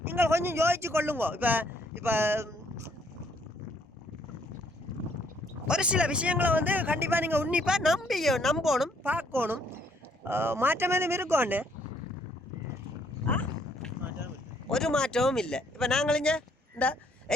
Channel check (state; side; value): normal; both; correlation 0.67